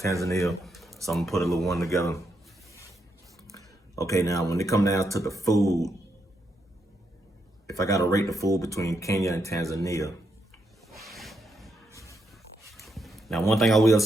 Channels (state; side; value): normal; both; correlation 0.81